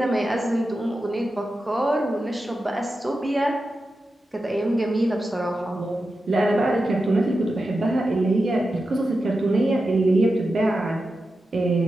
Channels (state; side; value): normal; both; correlation 0.91